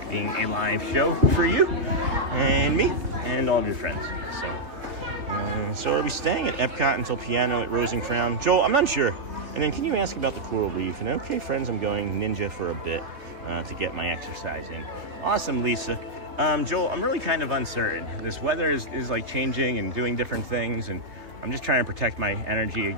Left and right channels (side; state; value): left; late; 3.1 ms